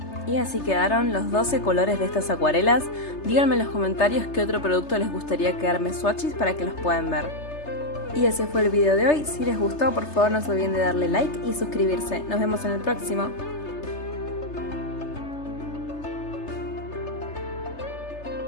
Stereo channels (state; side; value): late; right; 3.3 ms